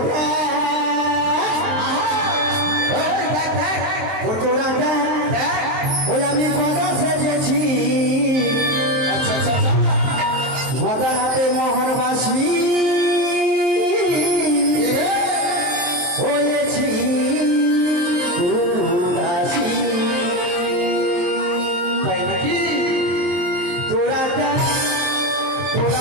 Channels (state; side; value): late; left; 23 ms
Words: দেখ ও তোরা দেখ ওই আমি গদা সেজেছি আচ্ছা আচ্ছা আচ্ছা গদা হাতে মোহনবাসী হয়েছি উদাসী তাই নাকি তোরা দেখ